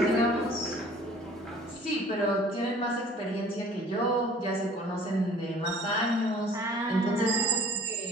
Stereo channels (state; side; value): normal; both; correlation 0.52